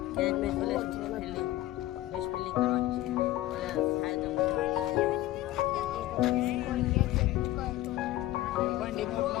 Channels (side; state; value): right; quieter; 15.7 dB